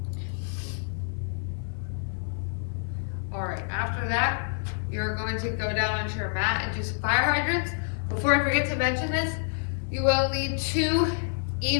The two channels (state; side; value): silent; right; 59 dB below the other